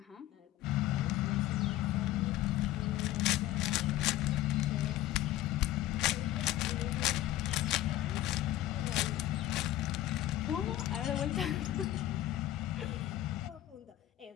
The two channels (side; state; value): right; quieter; 14.3 dB